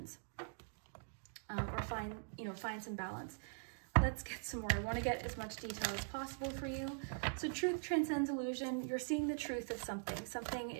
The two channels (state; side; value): silent; left; digital silence